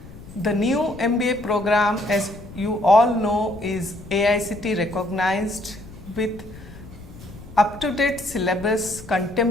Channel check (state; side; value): noise; left; rumble, 17 dB below the sound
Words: The new MBA program, as you all know, is AICTE recognized with up-to-date syllabus,